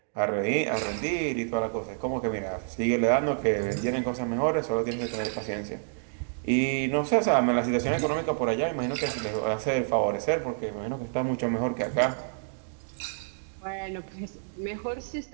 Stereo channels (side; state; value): left; silent; digital silence